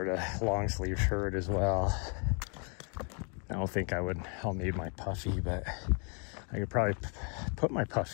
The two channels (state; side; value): quieter; right; 38.7 dB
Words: of long sleeve shirt as well. I don't think I'll need my puffy, but I could probably put my